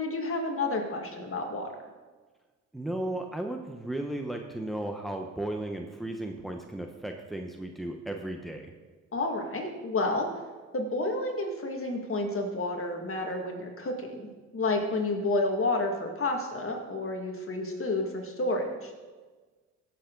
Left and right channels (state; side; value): normal; both; correlation 0.10